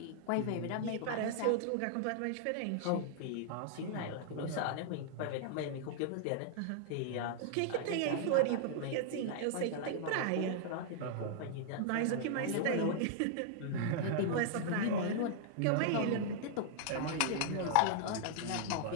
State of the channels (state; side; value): different; both; correlation -0.01